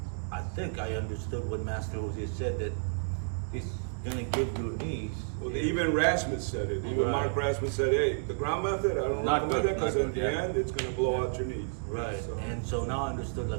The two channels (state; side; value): silent; left; digital silence